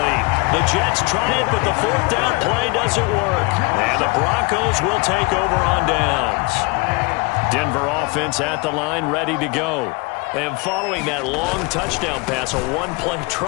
The Jets try it, but the 4th down play doesn't work. And the Broncos will take over on downs. Denver offense at the line, ready to go. And following that long touchdown pass, a one-play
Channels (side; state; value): right; quieter; 26.9 dB